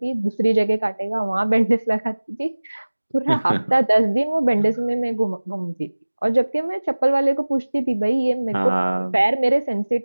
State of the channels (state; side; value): inverted; both; correlation -1.00